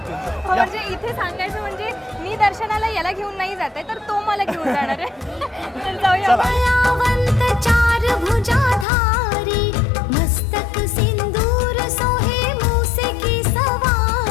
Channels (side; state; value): right; drops out; at 8.8 s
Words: घेऊन जातो. म्हणजे इथे सांगायचं म्हणजे मी दर्शनाला याला घेऊन नाही जाते तर तो मला घेऊन जाणार आहे. तर जाऊया. कलावंत चार भुजाधारी मस्तक सिंदूर सोहे मूसे की